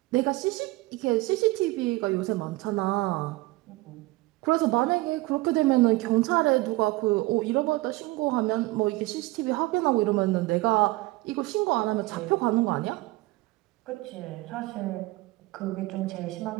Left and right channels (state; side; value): quieter; left; 20.6 dB